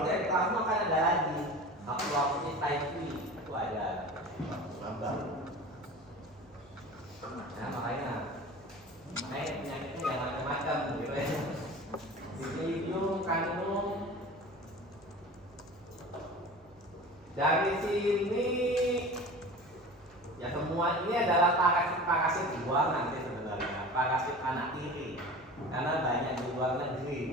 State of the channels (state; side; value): normal; both; correlation 0.36